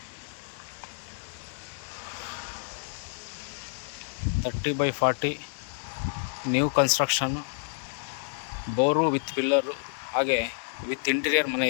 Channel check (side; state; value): right; silent; digital silence